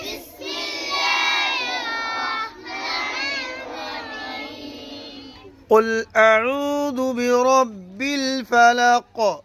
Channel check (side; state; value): both; identical; correlation 1.00